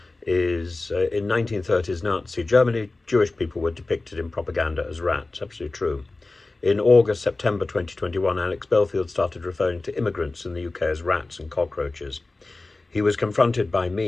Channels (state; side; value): quieter; right; 3.2 dB